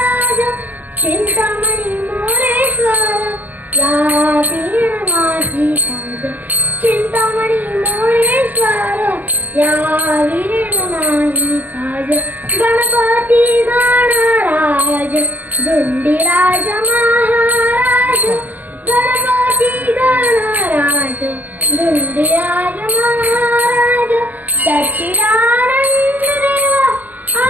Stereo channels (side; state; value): left; late; 0.082 ms